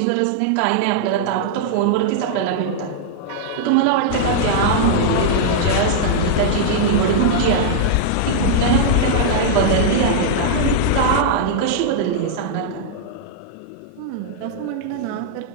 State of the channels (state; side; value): different; both; correlation -0.01